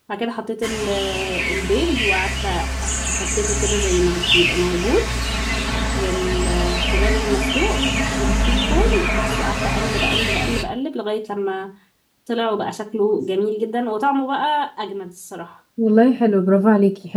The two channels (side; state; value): both; identical; correlation 1.00